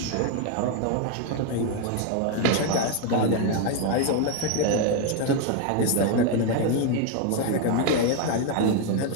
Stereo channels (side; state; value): both; different; correlation 0.01